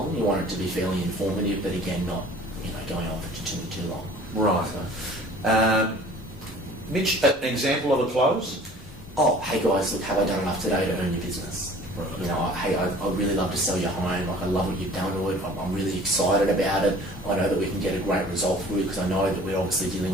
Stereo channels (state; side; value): normal; both; correlation 0.48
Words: You want it to be fairly informative, but again, not, you know, going on for too long. Right. So. Mitch, an example of a close? Oh, hey guys, look, have I done enough today to earn your business? Right. You know, hey, I'd really love to sell your home. Like, I love what you've done to it. I'm really excited about it. I know that we can get a great result for you, because I know that we're obviously dealing